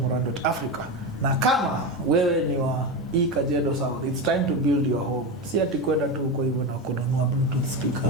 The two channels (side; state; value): both; normal; correlation 0.18